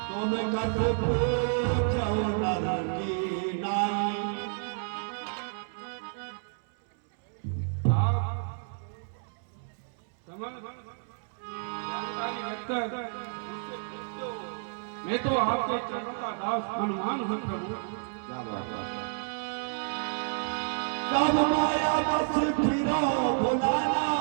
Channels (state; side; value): silent; left; 58 dB below the other